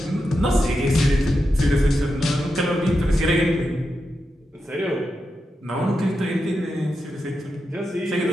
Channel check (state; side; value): normal; both; correlation 0.88